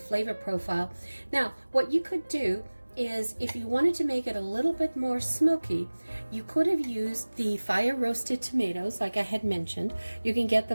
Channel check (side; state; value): both; inverted; correlation -1.00